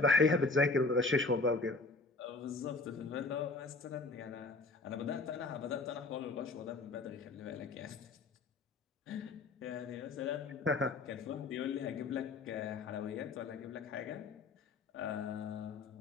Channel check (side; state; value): right; quieter; 3.6 dB